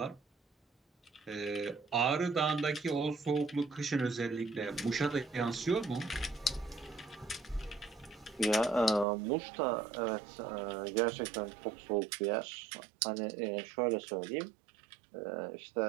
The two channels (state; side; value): drops out; left; at 9.1 s